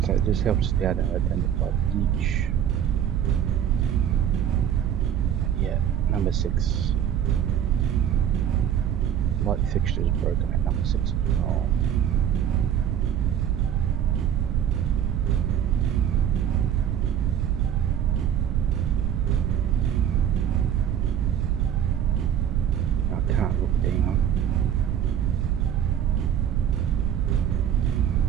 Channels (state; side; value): quieter; left; 9.6 dB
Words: So it just helps you out to identify each. Yeah, number 6. Light fixture is broken at number 6 as well. I can't look down.